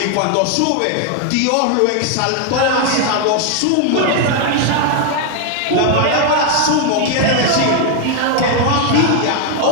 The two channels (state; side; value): different; both; correlation 0.00